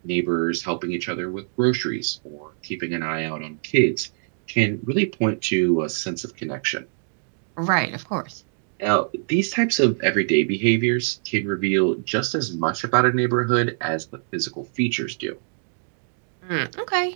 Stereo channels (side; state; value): left; silent; digital silence